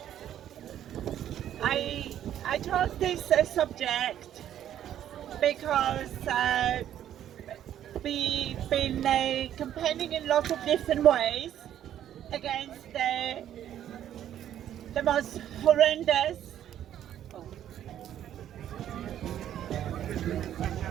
I chose this subject because we've been campaigning in lots of different ways against the most horrendous.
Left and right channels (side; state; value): left; quieter; 10.9 dB